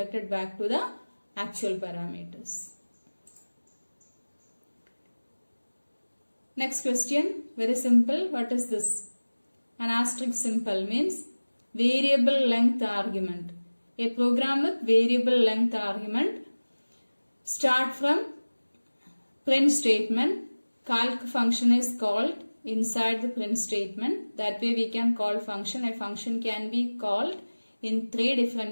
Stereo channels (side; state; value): both; inverted; correlation -1.00